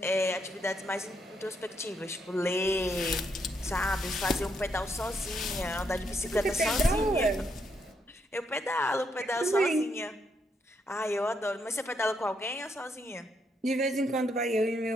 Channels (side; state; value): both; normal; correlation 0.76